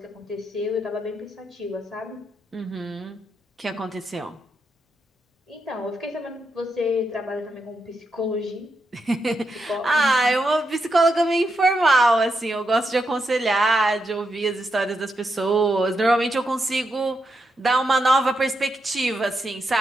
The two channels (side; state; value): both; normal; correlation 0.83